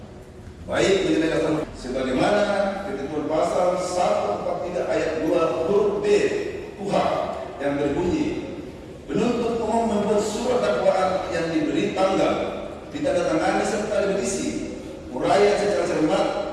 baik mengenai dasar sebagaimana ketentuan pasal 143 ayat 2 huruf B KUHP yang berbunyi penuntut umum membuat surat dakwaan yang diberi tanggal, ditandatangani serta berisi uraian secara cermat,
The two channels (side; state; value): both; identical; correlation 1.00